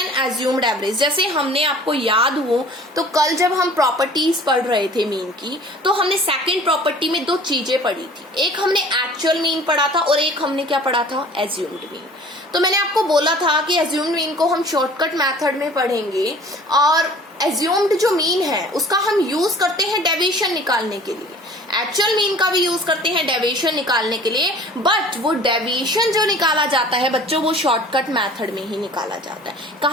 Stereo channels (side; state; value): both; normal; correlation 0.47